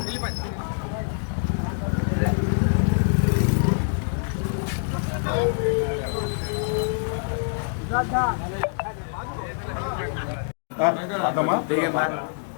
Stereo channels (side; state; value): right; silent; 62 dB below the other